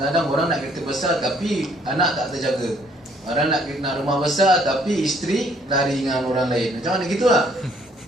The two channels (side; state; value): both; normal; correlation 0.64